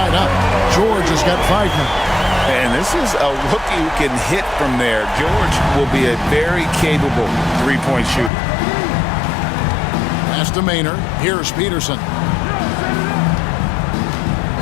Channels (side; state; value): right; drops out; at 8.3 s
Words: up. George has got 5 now. And this is a rookie who can hit from there. George will be a very capable 3-point shooter. Pass to Maynard. Here's Peterson.